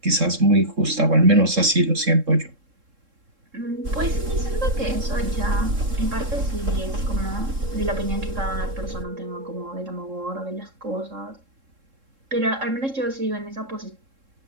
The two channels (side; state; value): left; late; 3.7 ms